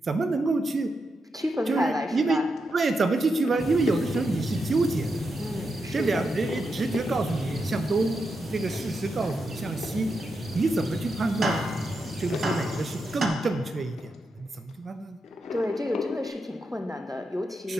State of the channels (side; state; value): both; normal; correlation 0.85